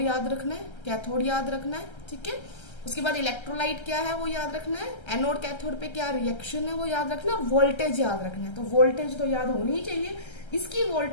याद रखना है, कैथोड याद रखना है, ठीक है। उसके बाद इलेक्ट्रोलाइट क्या है वो याद रखना है, एनोड कैथोड पे क्या रिएक्शन है वो याद रखना है, वोल्टेज याद रखना है। तो वोल्टेज तो याद होनी ही चाहिए। इसकी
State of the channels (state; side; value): late; right; 1.3 ms